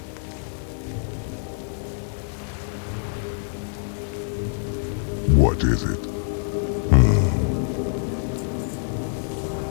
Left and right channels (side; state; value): right; silent; 57 dB below the other